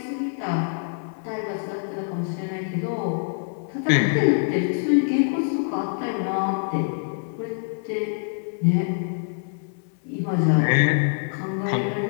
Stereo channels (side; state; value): right; silent; digital silence